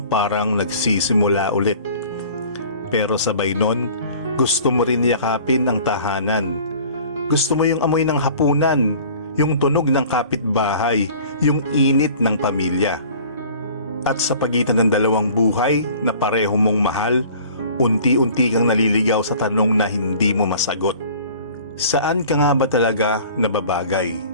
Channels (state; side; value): inverted; both; correlation -0.47